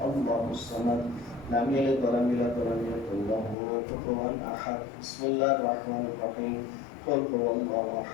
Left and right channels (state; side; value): drops out; right; at 3.6 s